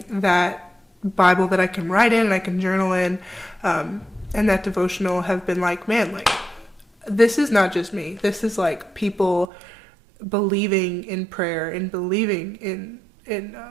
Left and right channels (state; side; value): drops out; left; at 9.5 s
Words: that Bible that I can write in and I can journal in, and that devotional have been like, man, like, this is not just me. This is like people believing in prayer and believing in